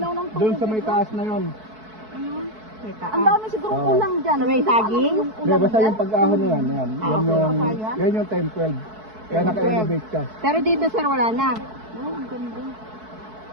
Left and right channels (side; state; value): left; late; 4.6 ms